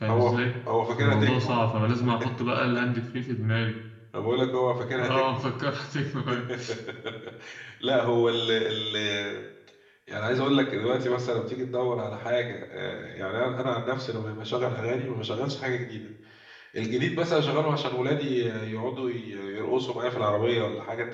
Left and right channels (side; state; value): both; identical; correlation 1.00